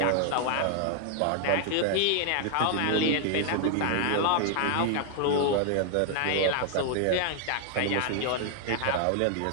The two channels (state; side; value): different; both; correlation 0.00